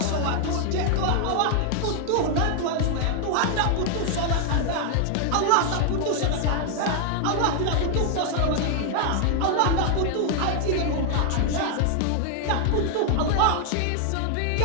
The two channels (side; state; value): both; different; correlation 0.00